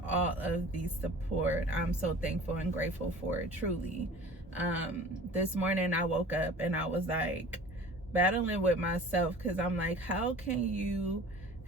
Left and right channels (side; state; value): both; normal; correlation 0.44